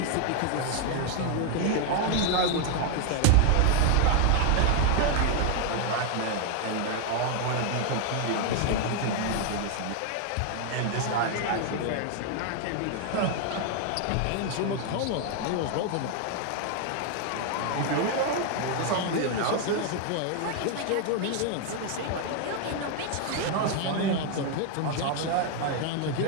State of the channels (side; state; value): both; different; correlation 0.00